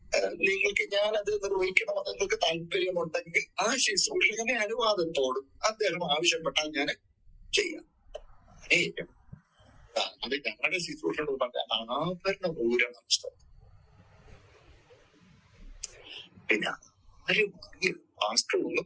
നിങ്ങൾക്ക് ഞാനത് നിർവഹിക്കണമെന്ന് നിങ്ങൾക്ക് താല്പര്യമുണ്ടെങ്കിൽ ആ ശുശ്രൂഷകനെ അനുവാദത്തോടും അദ്ദേഹം ആവശ്യപ്പെട്ടാൽ ഞാൻ ചെയ്യാം. അത് ഞങ്ങളുടെ ശുശ്രൂഷ പറഞ്ഞാൽ ആഭരണ പൂരം നഷ്ടം. പിന്നെ ആരും മാസ്റ്റർ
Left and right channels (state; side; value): identical; both; correlation 1.00